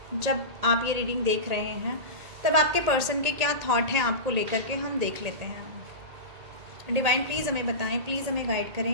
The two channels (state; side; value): late; left; 1.9 ms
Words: जब आप ये रीडिंग देख रहे हैं तब आपके पर्सन के क्या थॉट हैं आपको लेकर के, हम देख लेते हैं। डिवाइन प्लीज़ हमें बताएं, प्लीज़ हमें गाइड